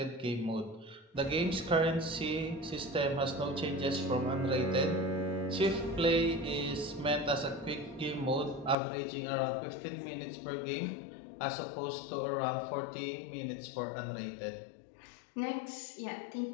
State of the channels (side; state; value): right; drops out; at 8.8 s